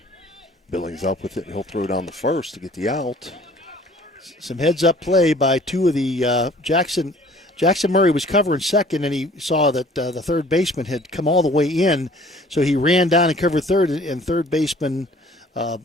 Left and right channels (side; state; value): both; normal; correlation 0.53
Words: Billings up with it, and he'll throw down the first to get the out. Some heads-up play by 2 of the Jackson Murray was covering second, and he saw that the third baseman had come all the way in, so he ran down and covered third, and third baseman Rob